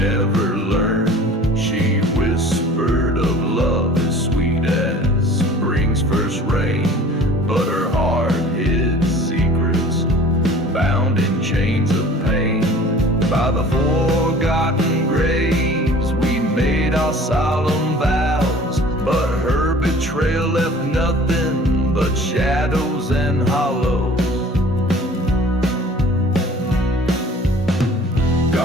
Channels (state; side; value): normal; both; correlation 0.47